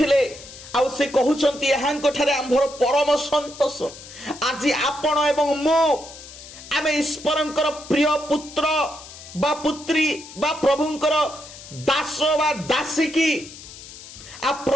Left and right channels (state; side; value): noise; left; hiss, 16 dB below the sound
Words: आउ से कहउछंती यहाँ कठारे आंभर परम संतोष आज आपण एवं मो आमे ईश्वरंकर प्रिय पुत्र बा पुत्री बा प्रभुंकर दास बा दासी की आ